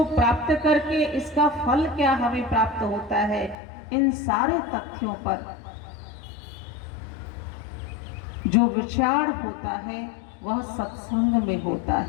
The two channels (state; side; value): drops out; right; at 3.6 s